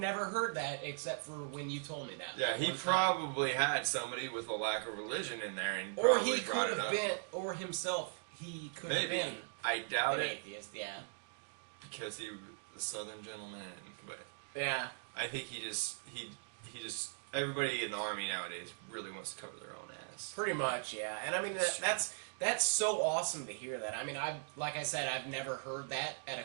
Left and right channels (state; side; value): silent; left; digital silence